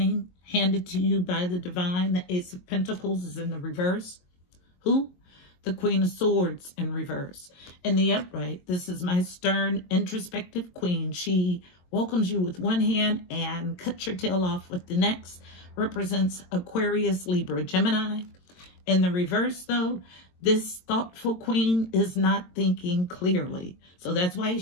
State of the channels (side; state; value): right; late; 22 ms